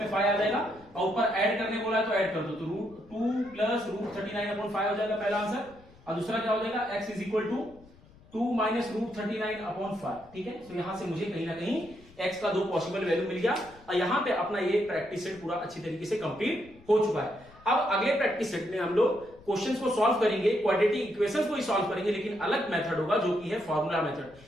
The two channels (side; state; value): left; noise; rumble, 25 dB below the sound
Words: 5 आ जाएगा, और ऊपर ऐड करने बोला है तो ऐड कर दो, तो √2 प्लस √39/5 हो जाएगा पहला आंसर, और दूसरा क्या हो जाएगा x is equal to 2 minus √39/5। ठीक है, तो यहां से मुझे कहीं ना कहीं x का दो पॉसिबल वैल्यू मिल गया, और यहां पे अपना ये प्रैक्टिस सेट पूरा अच्छी तरीके से कंप्लीट हो चुका है। अब अगले प्रैक्टिस सेट में हम लोग क्वेश्चंस को सॉल्व करेंगे, क्वाड्रेटिक इक्वेशंस को ही सॉल्व करेंगे, लेकिन अलग मेथड होगा जो कि है फॉर्मूला मेथड,